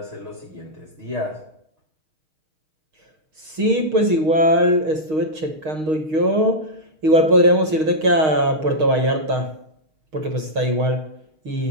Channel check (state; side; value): late; left; 6.4 ms